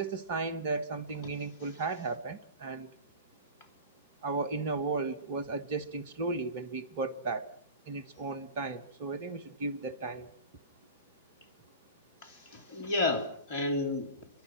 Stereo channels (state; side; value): inverted; both; correlation -0.33